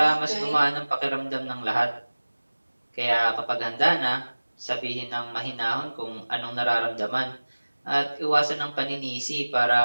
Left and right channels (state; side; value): inverted; both; correlation -1.00